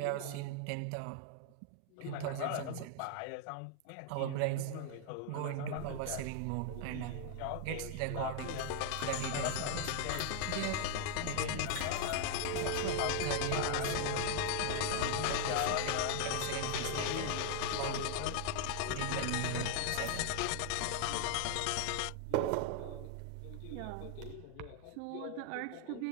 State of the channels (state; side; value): different; both; correlation 0.00